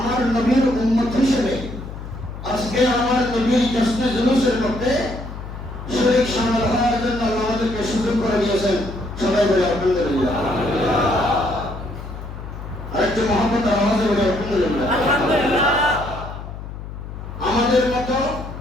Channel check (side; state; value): left; noise; hum, 10 dB below the sound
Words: নবীর উম্মত হিসেবে আজকে আমার নবীর জশ্নে জুলুসের মধ্যে শরীক শামিল হওয়ার জন্য আল্লাহ আমাদেরকে সুযোগ করে দিয়েছেন। সবাই বলে আলহামদুলিল্লাহ। আরেকটু মহব্বত আওয়াজে বলে আলহামদুলিল্লাহ। আমাদের মতো